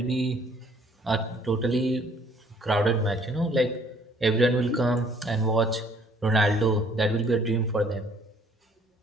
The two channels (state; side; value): normal; both; correlation 0.60